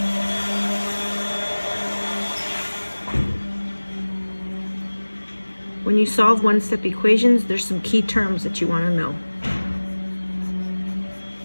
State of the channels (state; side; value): inverted; both; correlation -1.00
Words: When you solve one-step equations, there's some key terms that you want to know.